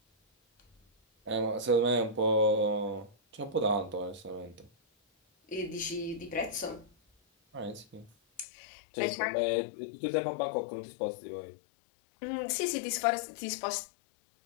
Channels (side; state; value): right; drops out; at 8.5 s